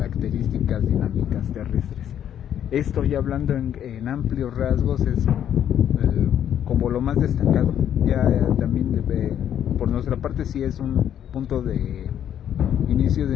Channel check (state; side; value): quieter; right; 9.9 dB